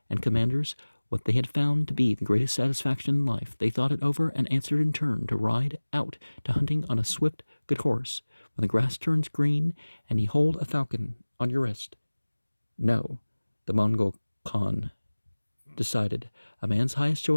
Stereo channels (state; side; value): inverted; both; correlation -1.00